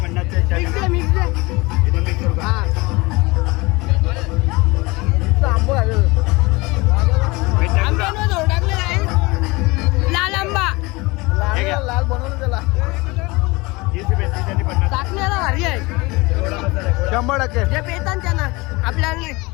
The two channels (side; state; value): right; quieter; 23.9 dB